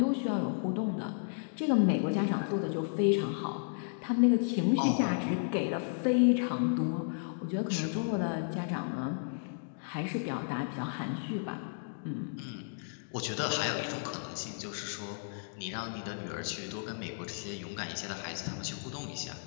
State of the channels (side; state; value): right; silent; digital silence